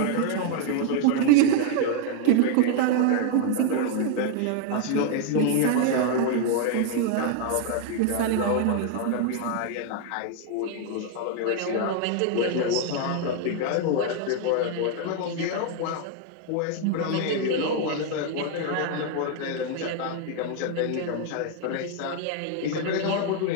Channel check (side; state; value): both; different; correlation 0.00